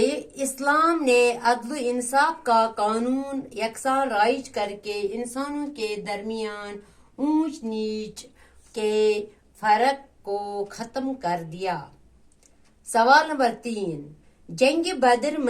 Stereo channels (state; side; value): identical; both; correlation 1.00